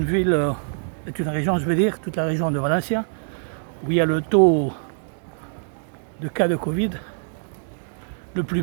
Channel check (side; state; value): left; silent; digital silence